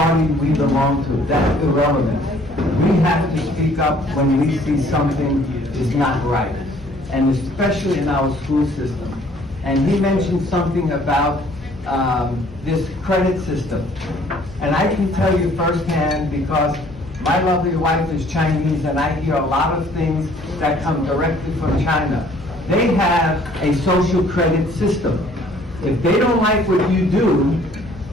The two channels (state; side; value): normal; both; correlation 0.58